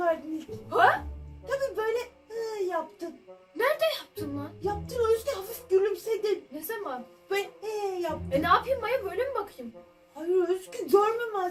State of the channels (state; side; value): identical; both; correlation 1.00